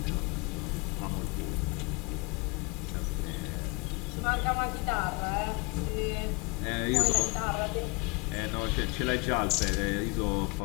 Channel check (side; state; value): right; quieter; 28.4 dB